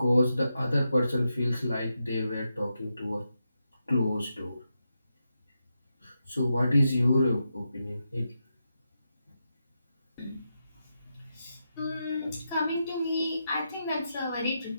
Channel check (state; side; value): inverted; both; correlation -0.86